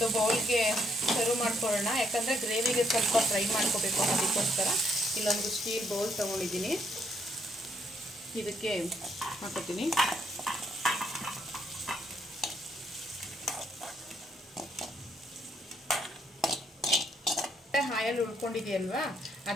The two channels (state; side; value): normal; both; correlation 0.72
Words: ಬೌಲ್ಗೆ ಸರ್ವ್ ಮಾಡ್ಕೊಳ್ಳೋಣ. ಯಾಕಂದರೆ ಗ್ರೇವಿಗೆ ಸ್ವಲ್ಪ ಫ್ರೈ ಮಾಡ್ಕೋಬೇಕು, ಅದಕ್ಕೋಸ್ಕರ ಇಲ್ಲೊಂದು ಸ್ಟೀಲ್ ಬೌಲ್ ತೊಗೊಂಡಿದ್ದೀನಿ. ಇದಕ್ಕೆ ಹಾಕೋತೀನಿ. ಹಾಯಲ್ಲಿ ಉಳ್ಕೊಂಡಿದೆಯಲ್ವಾ,